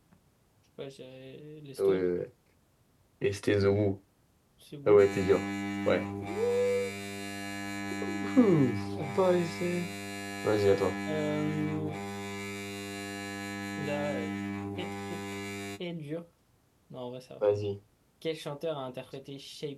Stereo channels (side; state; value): both; identical; correlation 1.00